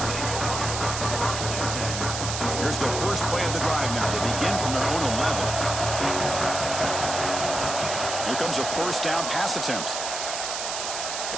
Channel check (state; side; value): noise; right; hiss, 4 dB below the sound